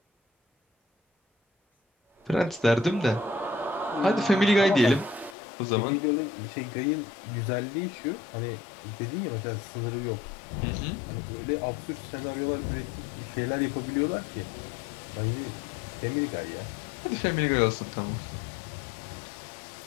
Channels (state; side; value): drops out; right; at 5.4 s